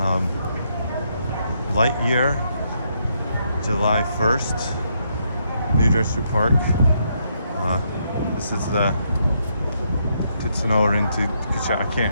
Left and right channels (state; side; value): inverted; both; correlation -0.76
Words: Lightyear, July 1st, New Jersey Park. This is the Tetsuno Rentu, I can't